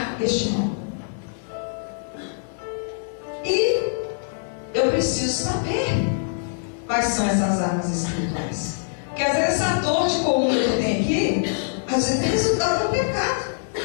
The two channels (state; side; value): silent; right; digital silence